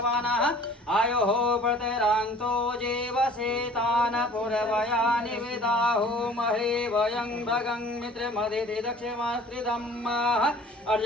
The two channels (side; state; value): both; normal; correlation 0.49